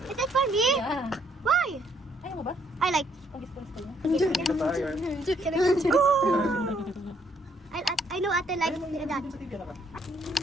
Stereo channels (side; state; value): both; normal; correlation 0.69